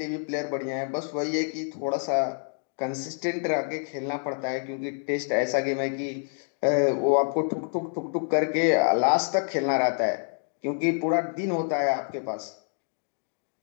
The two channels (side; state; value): right; silent; 60 dB below the other